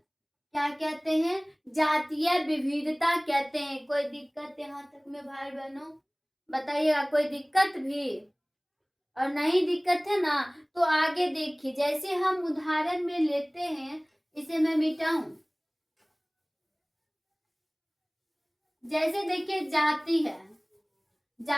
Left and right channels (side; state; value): both; identical; correlation 1.00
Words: क्या कहते हैं, जातीय विविधता कहते हैं। कोई दिक्कत यहाँ तक में भाई बहनों, बताइएगा, कोई दिक्कत भी? और नहीं दिक्कत है ना, तो आगे देखिए। जैसे हम उदाहरण में लेते हैं, इसे मैं मिटाऊं, जैसे देखिए जाति है,